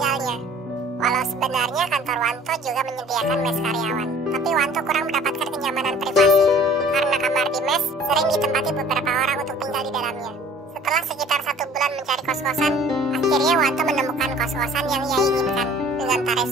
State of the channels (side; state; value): both; normal; correlation 0.51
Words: Walau sebenarnya kantor Wanto juga menyediakan mes karyawan, tapi Wanto kurang mendapatkan kenyamanan privasi karena kamar di mes sering ditempati beberapa orang untuk tinggal di dalamnya. Setelah sekitar 1 bulan mencari kos-kosan, akhirnya Wanto menemukan kos-kosan yang ia inginkan dengan tarif